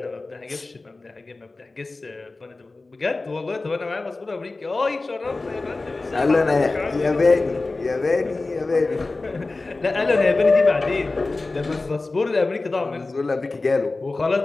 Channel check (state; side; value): quieter; right; 3.4 dB